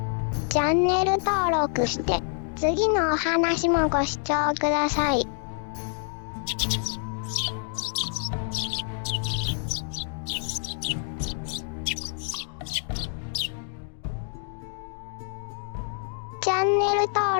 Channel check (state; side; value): silent; right; digital silence